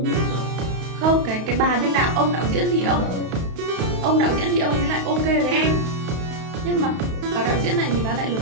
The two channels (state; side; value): late; left; 32 ms